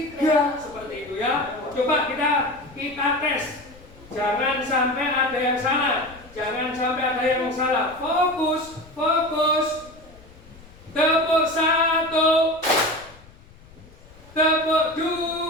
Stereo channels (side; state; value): left; noise; rumble, 23 dB below the sound